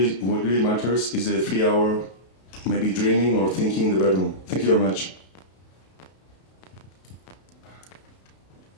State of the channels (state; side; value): late; right; 32 ms